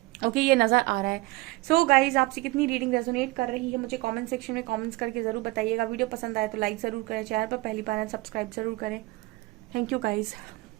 ओके, ये नजर आ रहा है। सो गाइज, आपसे कितनी रीडिंग रेजोनेट कर रही है मुझे कमेंट सेक्शन में कमेंट्स करके जरूर बताइएगा। वीडियो पसंद आए तो लाइक जरूर करें, चैनल पर पहली बार सब्सक्राइब जरूर करें। Thank you guys.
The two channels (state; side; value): quieter; left; 21.2 dB